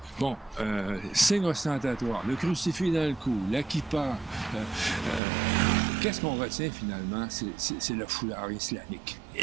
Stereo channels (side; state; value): left; drops out; at 5.2 s